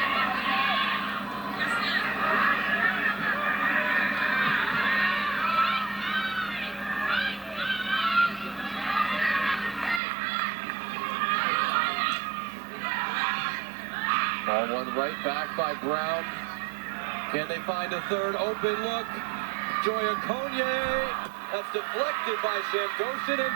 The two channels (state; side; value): drops out; left; at 10.0 s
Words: Ball one right back by Brown. Can they find a third open look? Joya Conye. That's deflected by Shamgoshin and